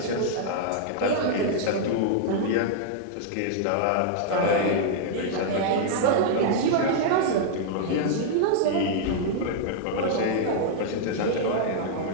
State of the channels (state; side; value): different; both; correlation -0.01